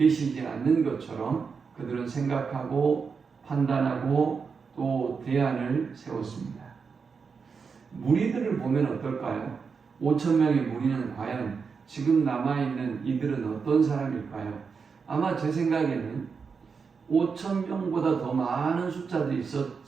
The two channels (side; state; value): left; quieter; 5.5 dB